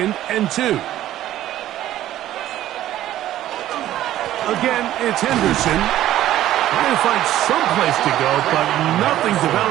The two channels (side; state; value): left; quieter; 13.3 dB